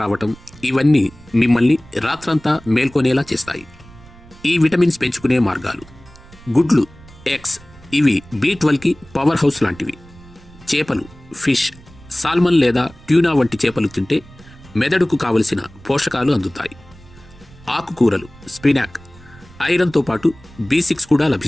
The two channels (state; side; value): noise; right; rumble, 22 dB below the sound